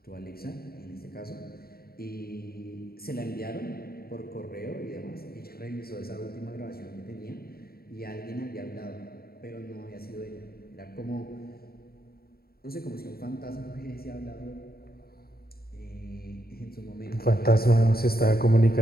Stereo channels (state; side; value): late; right; 0.44 ms